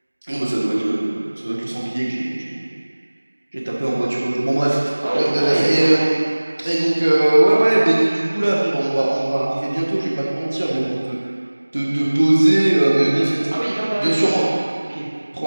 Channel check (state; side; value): inverted; both; correlation -1.00